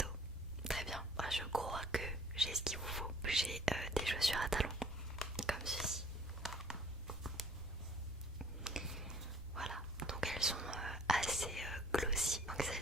Très bien. Moi, je crois que j'ai ce qu'il vous faut. J'ai des chaussures à talons, comme ceci. Voilà, donc elles sont assez glossy. Donc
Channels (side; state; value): both; normal; correlation 0.55